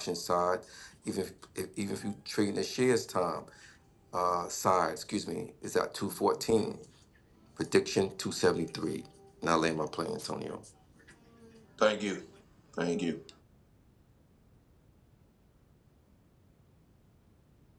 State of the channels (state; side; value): identical; both; correlation 1.00